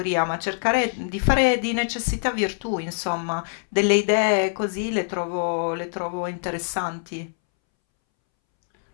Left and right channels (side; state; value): right; silent; 63 dB below the other